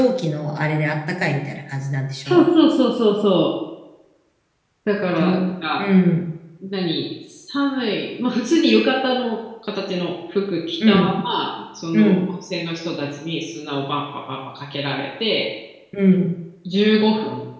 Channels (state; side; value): identical; both; correlation 1.00